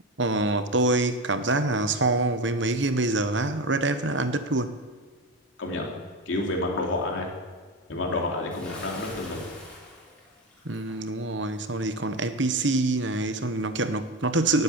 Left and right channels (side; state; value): both; normal; correlation 0.20